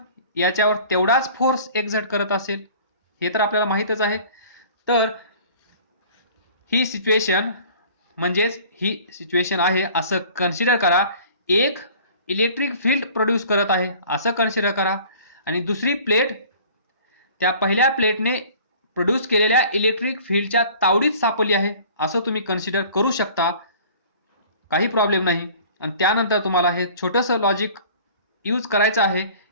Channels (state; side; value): inverted; both; correlation -0.48